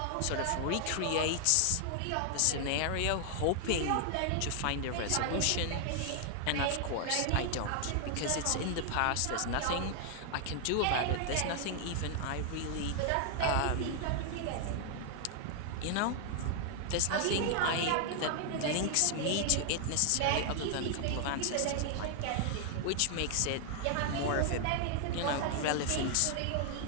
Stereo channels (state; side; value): different; both; correlation 0.00